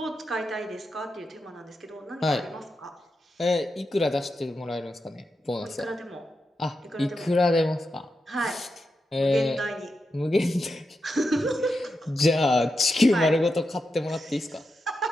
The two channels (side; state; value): both; normal; correlation 0.87